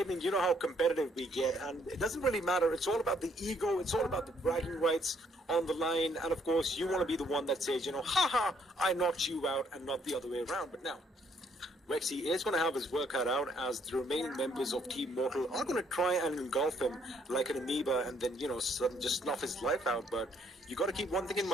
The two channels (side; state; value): both; normal; correlation 0.67